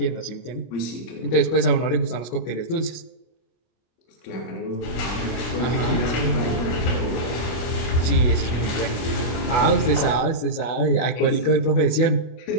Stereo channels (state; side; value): late; right; 24 ms